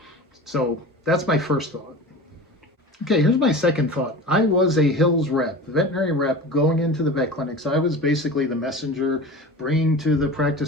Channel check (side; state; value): both; normal; correlation 0.34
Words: So that's my first thought. Okay, here's my second thought. I was a Hills rep, veterinary rep, going into the vet clinics. I was basically the messenger, bringing to the